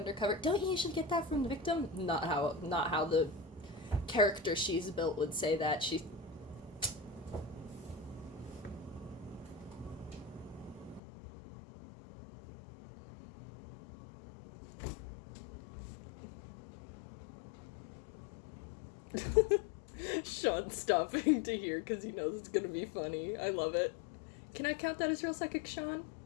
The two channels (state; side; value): drops out; right; at 11.0 s